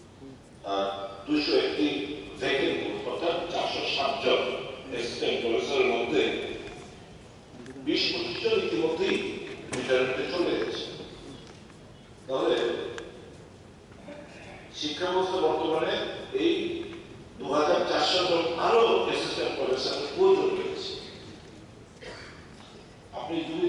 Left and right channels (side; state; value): both; identical; correlation 1.00